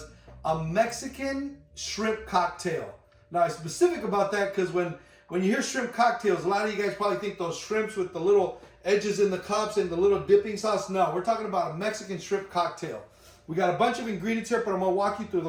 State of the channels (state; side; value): identical; both; correlation 1.00